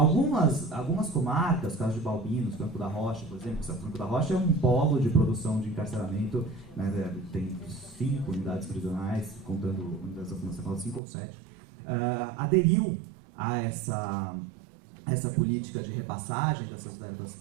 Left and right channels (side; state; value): left; drops out; at 11.0 s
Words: comarcas, caso de Balbinos, Franco da Rocha, por exemplo, Franco da Rocha é um polo de produção de encarceramento, né, tem 5 unidades prisionais, contando unidades da Fundação, 5 ou 7, aderiu a essa política de repassagem dessas verbas